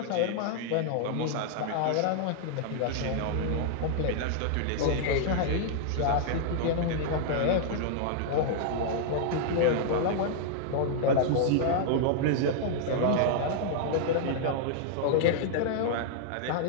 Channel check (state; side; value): different; both; correlation -0.01